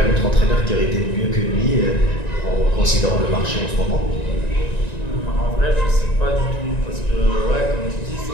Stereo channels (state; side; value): late; right; 1.9 ms